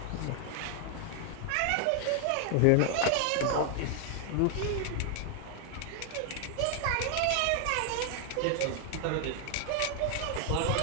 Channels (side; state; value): both; different; correlation 0.00